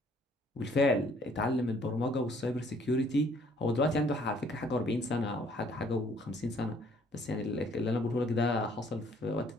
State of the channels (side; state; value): both; normal; correlation 0.61